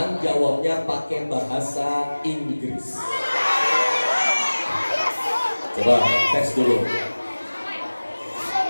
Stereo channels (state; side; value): inverted; both; correlation -1.00